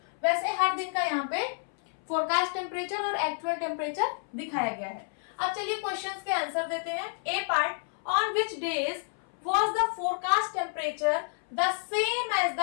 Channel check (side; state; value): right; silent; 58 dB below the other